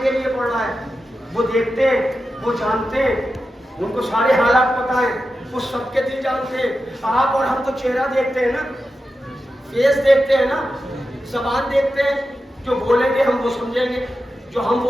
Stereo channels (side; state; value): both; normal; correlation 0.91